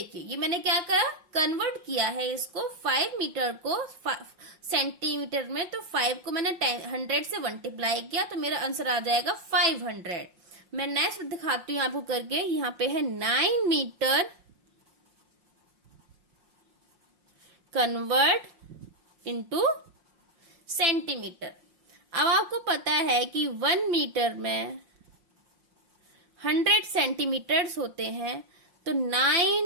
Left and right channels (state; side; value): late; left; 5.6 ms